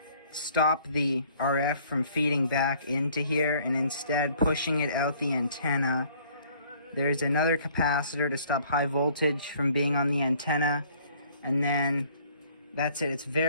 stop the RF from feeding back into here and instead pushing it out the antenna. There's another capacitor to stop high voltage from being on the antenna, and then that's it. It's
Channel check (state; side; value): inverted; both; correlation -0.58